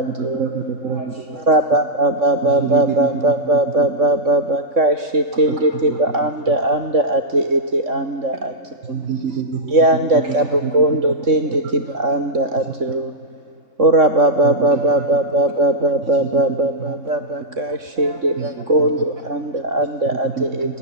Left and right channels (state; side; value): late; left; 3.6 ms